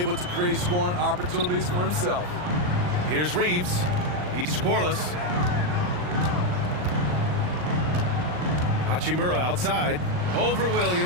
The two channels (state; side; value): late; left; 39 ms